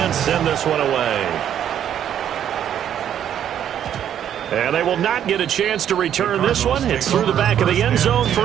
send this one away. And they will not get a chance to return this one. It's through the back of the end zone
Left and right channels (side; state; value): left; quieter; 9.9 dB